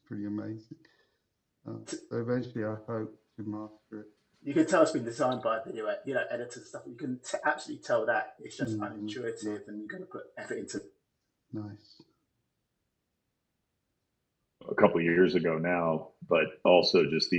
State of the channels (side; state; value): both; identical; correlation 1.00